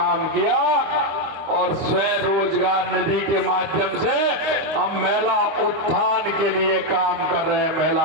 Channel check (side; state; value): left; late; 25 ms